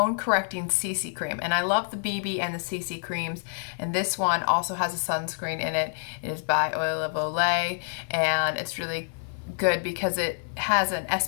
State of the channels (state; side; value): silent; right; 60 dB below the other